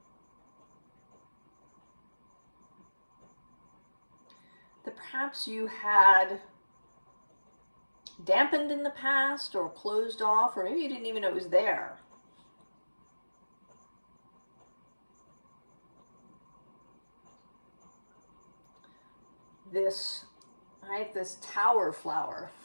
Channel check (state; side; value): inverted; both; correlation -1.00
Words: That perhaps you had dampened in the past or closed off, or maybe you didn't even know it was there. This, right, this tower flower